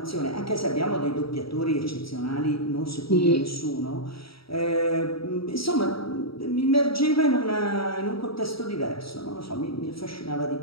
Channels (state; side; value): late; right; 0.75 ms